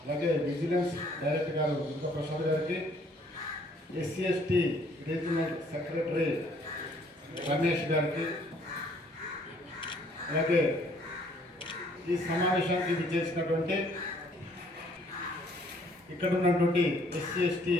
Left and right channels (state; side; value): normal; both; correlation 0.62